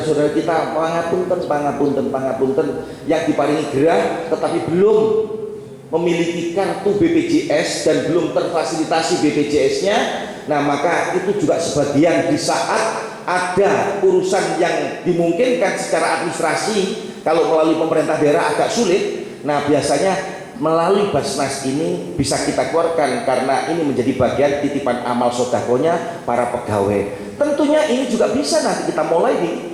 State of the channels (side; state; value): both; identical; correlation 1.00